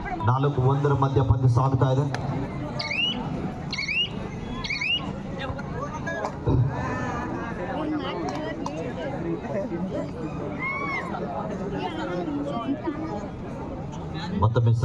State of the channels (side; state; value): both; identical; correlation 1.00